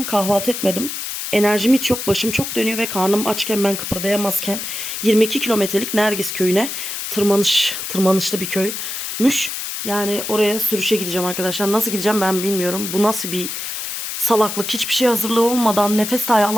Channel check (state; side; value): noise; left; hiss, 5 dB below the sound